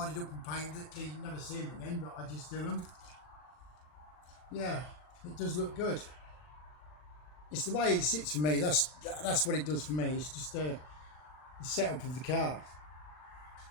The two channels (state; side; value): late; right; 40 ms